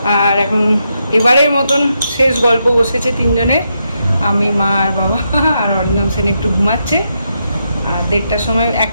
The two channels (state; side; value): inverted; both; correlation -0.82